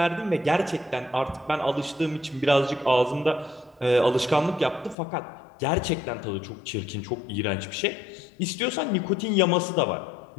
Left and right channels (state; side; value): drops out; right; at 5.0 s